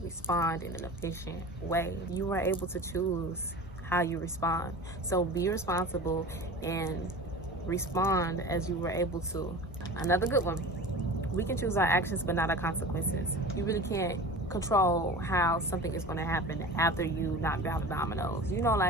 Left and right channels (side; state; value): both; normal; correlation 0.35